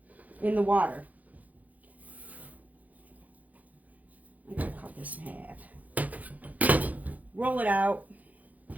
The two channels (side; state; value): left; late; 0.078 ms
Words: in the water. I'm going to cut this in half. Roll it out.